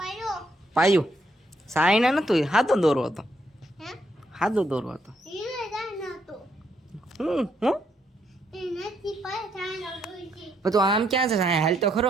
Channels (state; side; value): normal; both; correlation 0.75